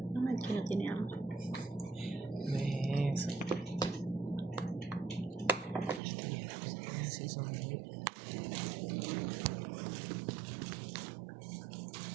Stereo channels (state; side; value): drops out; left; at 6.0 s